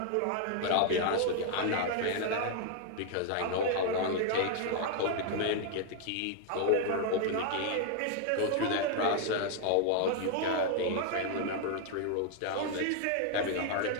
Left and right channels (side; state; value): both; different; correlation 0.00